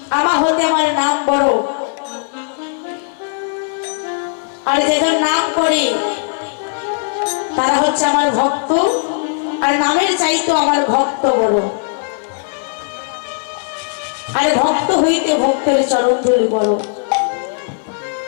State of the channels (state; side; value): silent; right; 66 dB below the other